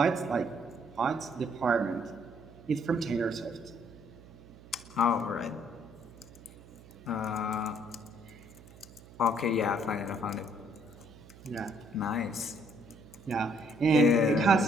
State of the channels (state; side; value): noise; right; hum, 20 dB below the sound